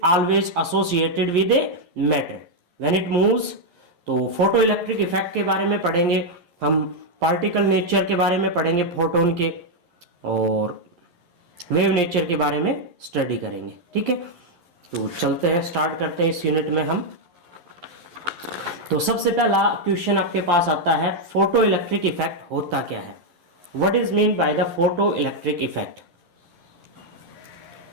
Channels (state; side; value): late; left; 11 ms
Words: always associated with a matter when it moves. तो फोटो इलेक्ट्रिक इफेक्ट के बारे में पढ़ेंगे हम, पार्टिकल नेचर के बारे में पढ़ेंगे फोटोन के, और वेव नेचर के बारे में स्टडी करेंगे। ठीक है, तो चलते हैं, स्टार्ट करते हैं इस यूनिट में हम। तो सबसे पहला क्वेश्चन आपके पास आता है, फोटो इलेक्ट्रिक इफेक्ट होता क्या है? What is mean by the photoelectric effect?